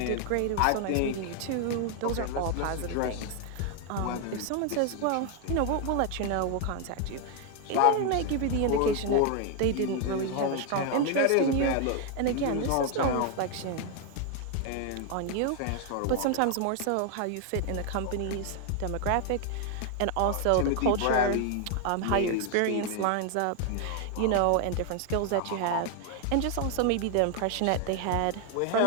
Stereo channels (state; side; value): different; both; correlation 0.00